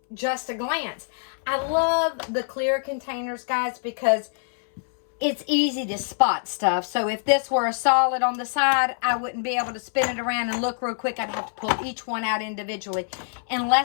just a glance. I love the clear containers, guys, because it's easy to spot stuff. So if this were a solid on the side, I wouldn't be able to spin it around and look real quick. I'd have to pull each one out individually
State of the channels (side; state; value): right; silent; 62 dB below the other